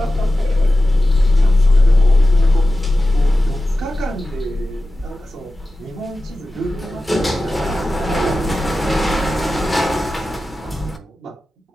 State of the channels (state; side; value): normal; both; correlation 0.94